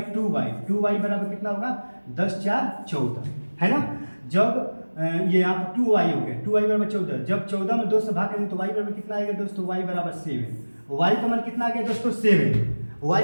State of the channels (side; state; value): both; inverted; correlation -1.00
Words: 2y बराबर कितना होगा 10 4 14, है ना। जब ये यहाँ पर 2y हो गया, 2y बराबर 14, जब 14 में 2 से भाग करेंगे तो y बराबर कितना आएगा दोस्तों, y बराबर 7, y का मान कितना आ गया दोस्तों 7, y